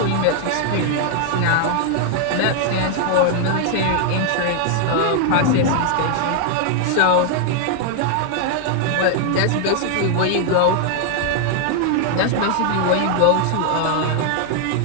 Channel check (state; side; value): different; both; correlation 0.00